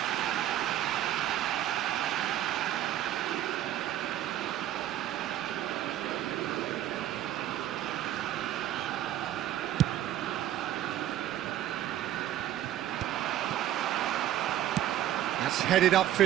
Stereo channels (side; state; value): left; quieter; 12.5 dB